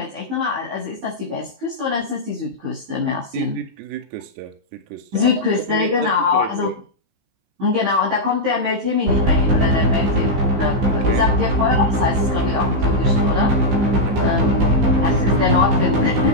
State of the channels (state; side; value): late; left; 15 ms